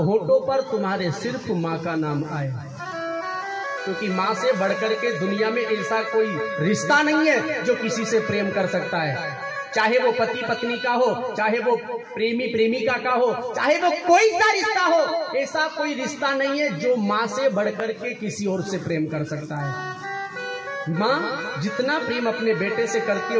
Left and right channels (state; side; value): identical; both; correlation 1.00